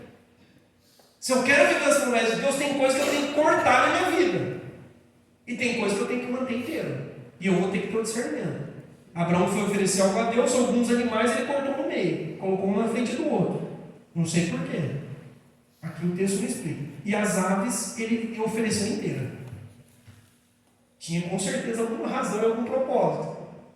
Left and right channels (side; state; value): both; identical; correlation 1.00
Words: Se eu quero viver as promessas de Deus, tem coisas que eu tenho que cortar na minha vida. E tem coisas que eu tenho que manter inteira. E eu vou ter que ter o discernimento. Abraão foi oferecer algo a Deus, alguns animais ele cortou no meio, colocou um na frente do outro. Não sei porquê. Aqui o texto não explica. E as aves ele ofereceu inteira. Tinha com certeza alguma razão e algum propósito.